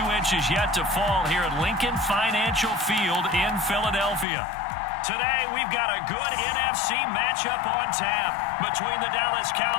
inches yet to fall here at Lincoln Financial Field in Philadelphia. Today, we've got a good NFC matchup on tap between the Dallas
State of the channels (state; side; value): drops out; right; at 4.2 s